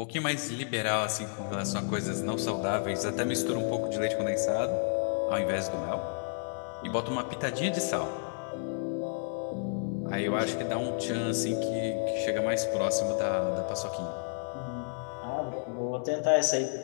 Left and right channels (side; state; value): right; silent; 57 dB below the other